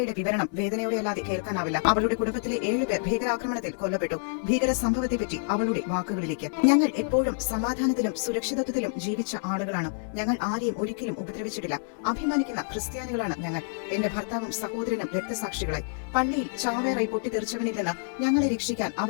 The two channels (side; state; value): right; silent; 60 dB below the other